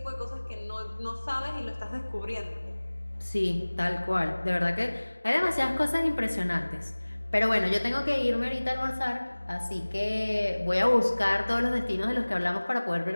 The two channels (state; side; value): inverted; both; correlation -1.00